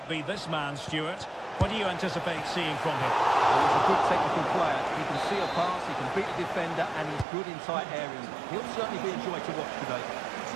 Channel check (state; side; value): drops out; left; at 7.2 s